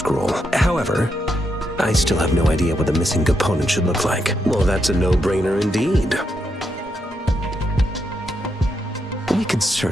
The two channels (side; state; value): both; normal; correlation 0.81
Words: However, I still have no idea what the missing component should look like. Well, that's a no-brainer indeed. We could